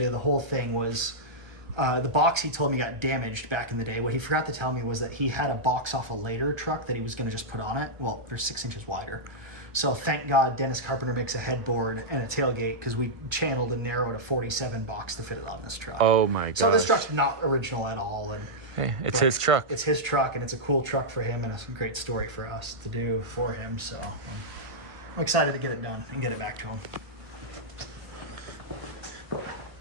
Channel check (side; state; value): left; late; 1.5 ms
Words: the whole thing was the box he told me got damaged back in the day. What he forgot to tell me was that he had a box off a later truck that he was going to just put on it. Well, they're 6 inches wider. So thank God Dennis Carpenter makes a headboard and a tailgate, because we channeled and narrowed a 47 box to fit it on this truck. Oh my god. So this truck's not original at all. Hey, it's his truck. It's his truck, and it's a cool truck for him, and a great story for us to do for him. So I'm excited to get it done and get it back to him.